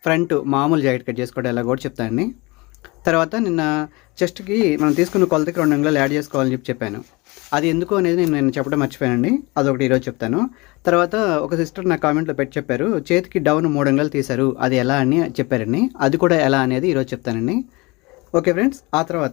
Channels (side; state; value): right; quieter; 24.8 dB